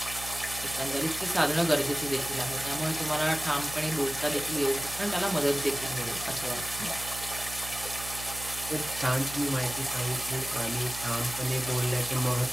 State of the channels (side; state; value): right; noise; hum, 12 dB below the sound